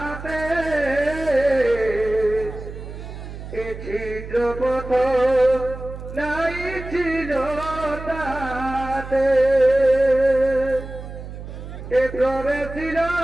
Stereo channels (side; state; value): right; noise; hum, 11 dB below the sound